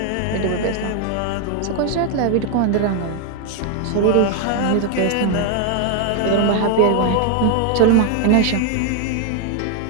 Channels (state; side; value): different; both; correlation 0.00